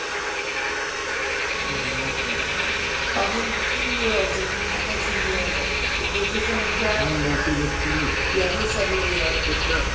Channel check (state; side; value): identical; both; correlation 1.00